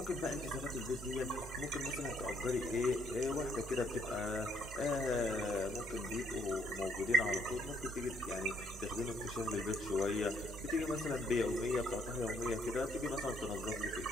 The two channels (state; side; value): normal; both; correlation 0.68